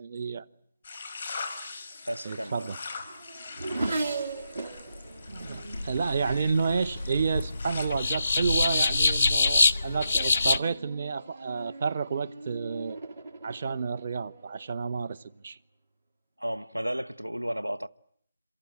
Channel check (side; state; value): both; inverted; correlation -0.84